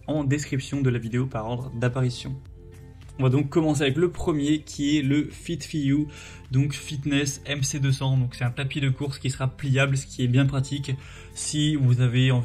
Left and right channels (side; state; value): both; identical; correlation 1.00